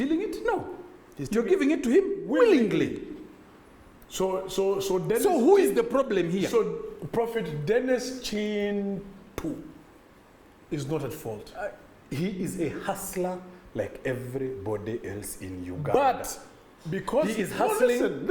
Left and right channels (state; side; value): identical; both; correlation 1.00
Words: it? No. You're giving it to him willingly. So Dennis, who is the problem here? So Prophet Dennis Chin too is not at fault. He is a hustler like everybody else in Uganda. But because he is hustling.